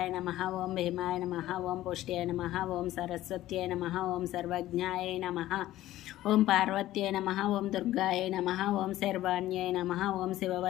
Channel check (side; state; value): right; quieter; 14.8 dB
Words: నమః, ఓం భీమాయ నమః, ఓం పుష్ట్యాయ నమః, ఓం సరస్వత్యాయ నమః, ఓం సర్వజ్ఞాయ నమః, ఓం పార్వత్యాయ నమః, ఓం దుర్గాయ నమః, ఓం శర్వాణ్యాయ నమః, ఓం